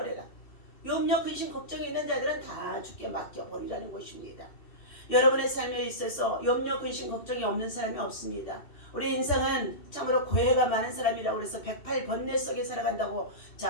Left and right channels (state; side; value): late; right; 2.6 ms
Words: 염려, 근심, 걱정이 있는 자들은 다 주께 맡겨 버리라는 것입니다. 여러분의 삶에 있어서 염려, 근심, 걱정이 없는 사람이 없습니다. 우리 인생은 참으로 고해가 많은 사람이라고 해서 108번뇌 속에 살아간다고